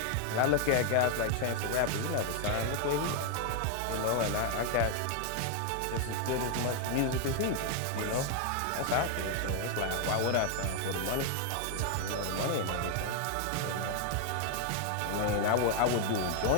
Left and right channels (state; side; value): different; both; correlation 0.00